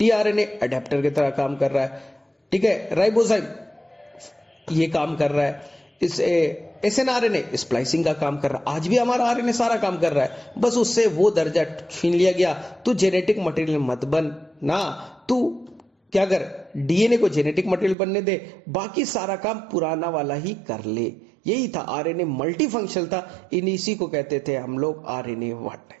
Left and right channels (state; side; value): drops out; left; at 17.9 s